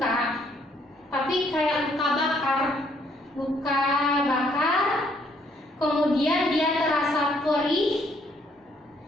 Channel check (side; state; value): both; normal; correlation 0.68